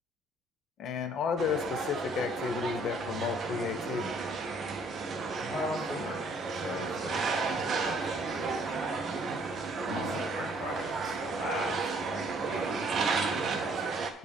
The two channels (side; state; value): both; normal; correlation 0.62